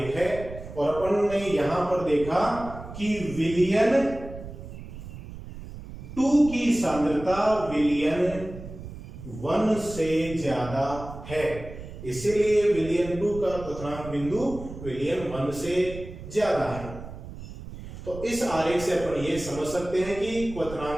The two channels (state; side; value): noise; right; rumble, 12 dB below the sound